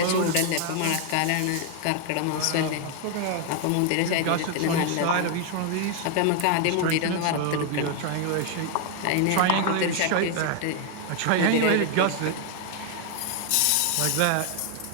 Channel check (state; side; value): different; both; correlation 0.00